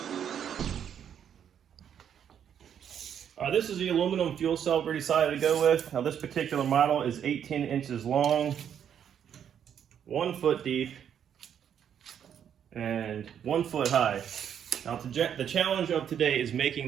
This is the aluminum fuel cell we decided to go with. Now this particular model is 18 inches long, 1 foot deep, and 1 foot high. Now the challenge of today is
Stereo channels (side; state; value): left; quieter; 8.8 dB